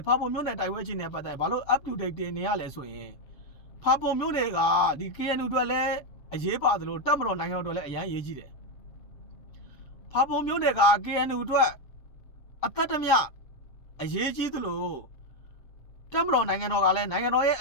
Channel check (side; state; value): right; late; 7.3 ms